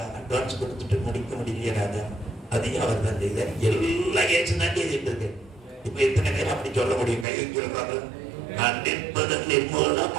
அட்வான்ஸ் கொடுத்துட்டு முடிக்க முடியல. அதையும் அவர் தான் செய்தார். எல்லாம் ஏற்று தான் செய்துட்டு இருக்கு. இப்ப எத்தனை பேர் அப்படி சொல்ல முடியும்? கை சொல்லுவாங்க. நான் நிற்பதன்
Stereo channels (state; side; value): drops out; left; at 7.2 s